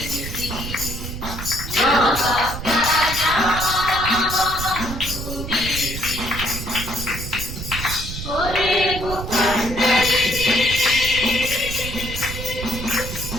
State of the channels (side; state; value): right; noise; rumble, 7 dB below the sound